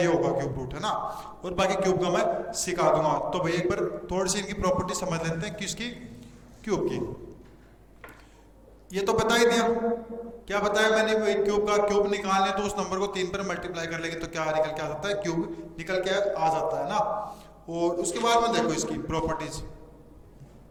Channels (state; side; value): identical; both; correlation 1.00